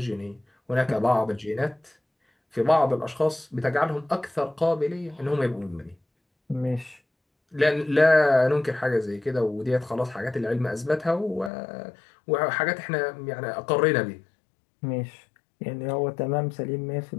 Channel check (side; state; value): right; drops out; at 11.5 s